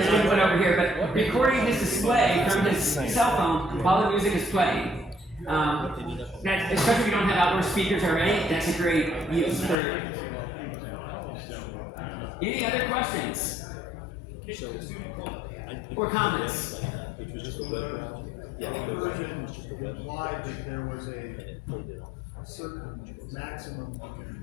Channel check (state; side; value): drops out; right; at 9.8 s